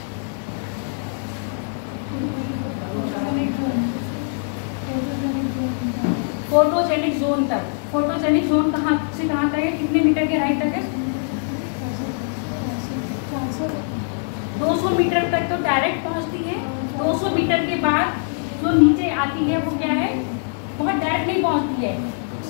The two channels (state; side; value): silent; right; 56 dB below the other